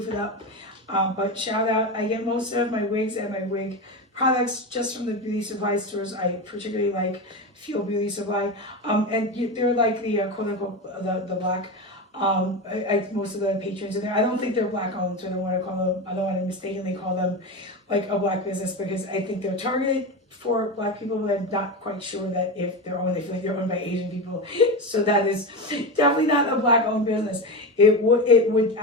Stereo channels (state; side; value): normal; both; correlation 0.19